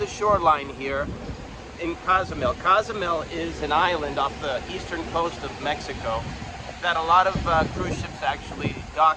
shoreline here in Cozumel. Cozumel is an island off the eastern coast of Mexico that a lot of cruise ships actually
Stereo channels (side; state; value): both; identical; correlation 1.00